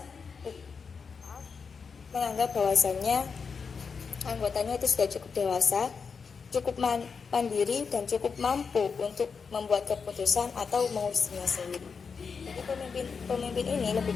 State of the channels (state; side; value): quieter; right; 5.6 dB